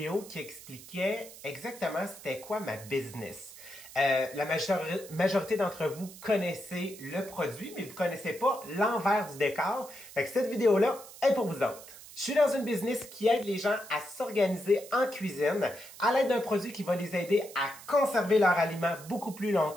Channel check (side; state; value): right; noise; hiss, 17 dB below the sound